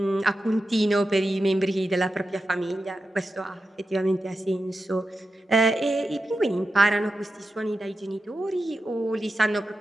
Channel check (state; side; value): normal; both; correlation 0.90